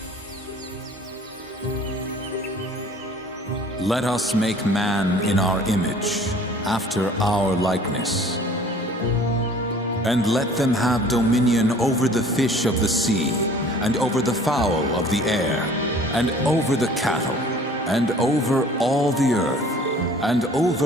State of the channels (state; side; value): normal; both; correlation 0.50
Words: Let us make man in our image, after our likeness. And let them have dominion over the fish of the sea, and over the fowl of the air, and over the cattle, and over all the earth, and